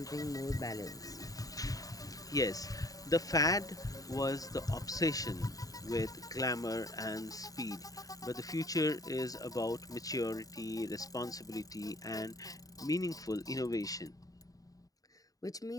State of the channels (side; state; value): right; late; 0.17 ms